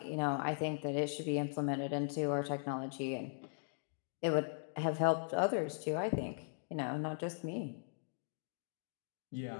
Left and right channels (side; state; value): right; silent; digital silence